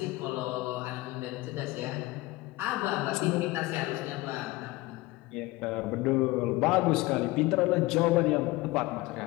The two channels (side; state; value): right; quieter; 20.3 dB